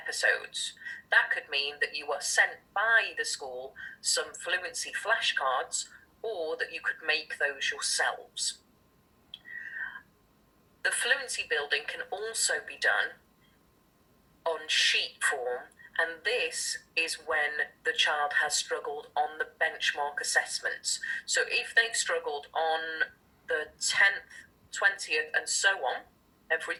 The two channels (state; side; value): identical; both; correlation 1.00